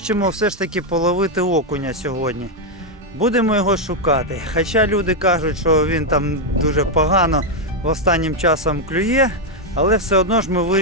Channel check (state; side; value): normal; both; correlation 0.02